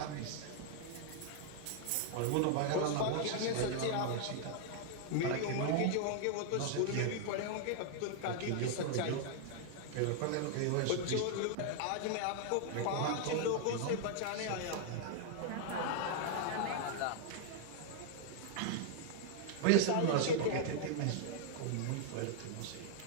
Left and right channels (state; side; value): different; both; correlation 0.00